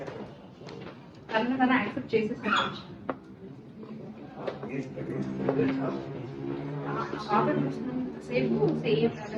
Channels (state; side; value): identical; both; correlation 1.00